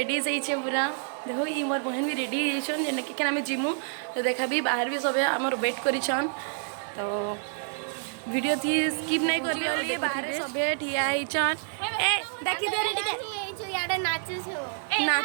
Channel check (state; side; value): silent; left; digital silence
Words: जाइछे पूरा देखो ई मोर बहन भी रेडी जाइछन जेना कि आमे जिमु तो देखा भी बाहर भी सबे हमर वेट करिछन तो वीडियो थी स्किप नहीं करियो बाहर सबे ठिया आइछन ए देखि दे रे टिके याडे नाचू छो